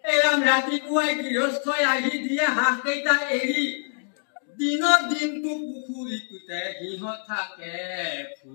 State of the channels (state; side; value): silent; right; digital silence